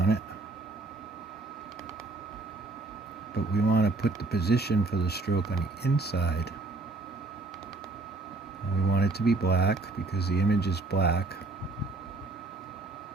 it, but we want to put the position for the stroke on the inside. And we want it to be black because the image is black.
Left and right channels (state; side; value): quieter; left; 3.2 dB